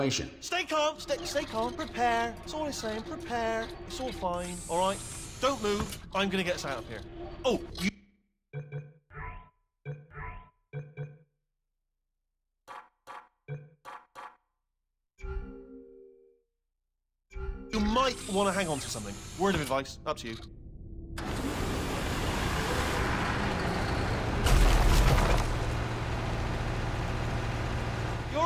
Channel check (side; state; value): both; identical; correlation 1.00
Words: Stay calm. Stay calm. Prepare. That's all I'm saying. Prepare. It's all fine. All right? Don't move. I'm going to get us out of here. Oh, you... You might want to hang on to something. Word of advice. Up to you. You all